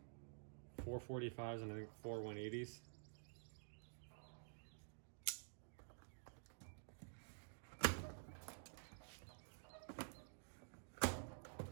4 45s, and I think 4 180s.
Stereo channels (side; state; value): left; silent; digital silence